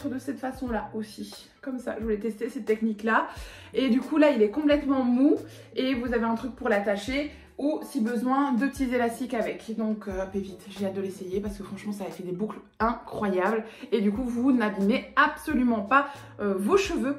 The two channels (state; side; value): identical; both; correlation 1.00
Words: de cette façon là aussi, comme ça. Je voulais tester cette technique là et du coup là il est complètement mou et vous avez un truc pour l'attacher ou si besoin 2 petits élastiques avec. Donc pépite, j'ai hâte de l'essayer parce que franchement ça a fait des boucles incroyables et du coup vous n'abîmez absolument pas vos cheveux